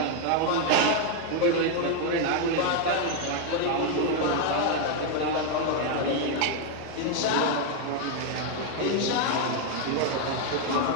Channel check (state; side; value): different; both; correlation 0.01